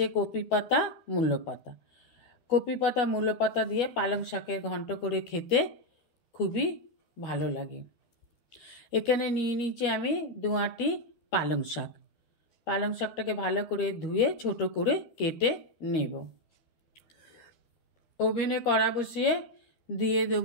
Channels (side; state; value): right; late; 13 ms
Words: কপি পাতা মূলো পাতা। কপি পাতা মূলো পাতা দিয়ে পালং শাকের ঘন্ট করে খেতে খুবই ভালো লাগে। এখানে নিয়ে নিয়েছি আমি 2 আঁটি পালং শাক। পালং শাকটাকে ভালো করে ধুয়ে ছোট করে কেটে নেব। ওভেনে কড়া বসিয়ে দিয়ে